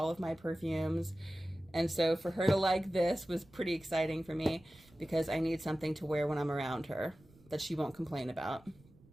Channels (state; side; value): noise; right; rumble, 27 dB below the sound